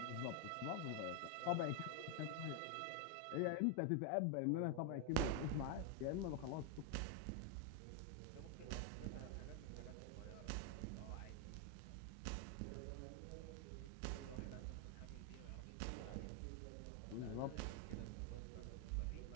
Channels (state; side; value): different; both; correlation 0.01